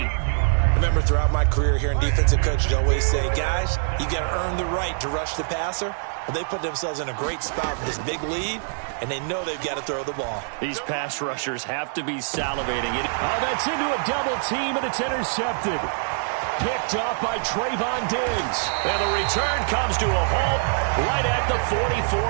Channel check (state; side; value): silent; left; digital silence